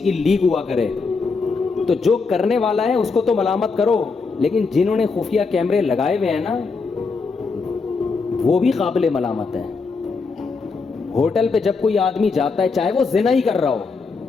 لیک ہوا کرے تو جو کرنے والا ہے اس کو تو ملامت کرو، لیکن جنہوں نے خفیہ کیمرے لگائے ہوئے ہیں نا وہ بھی قابل ملامت ہیں۔ ہوٹل پہ جب کوئی آدمی جاتا ہے چاہے وہ زنا ہی کر رہا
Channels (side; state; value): right; quieter; 4.5 dB